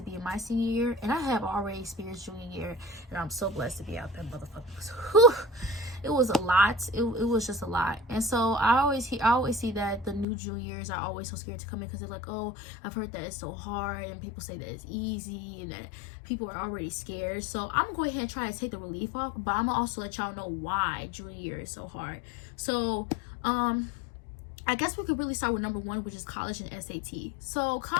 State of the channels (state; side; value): drops out; right; at 10.2 s